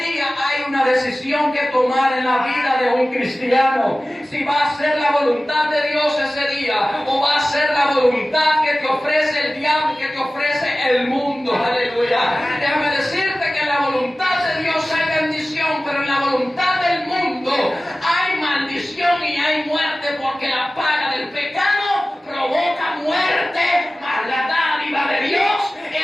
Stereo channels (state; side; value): normal; both; correlation 0.96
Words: hay una decisión que tomar en la vida de un cristiano. Si va a ser la voluntad de Dios ese día, o va a ser la voluntad que te ofrece el diablo, que te ofrece el mundo. Aleluya. Déjame decirte que en la voluntad de Dios hay bendición, pero en la voluntad del mundo